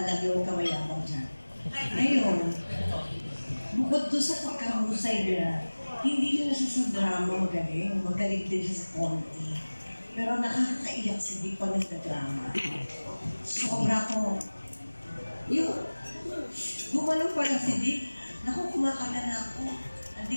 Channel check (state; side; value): inverted; both; correlation -1.00